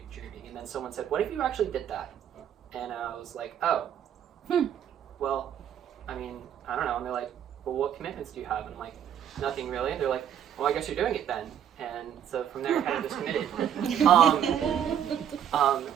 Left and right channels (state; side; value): quieter; left; 9.4 dB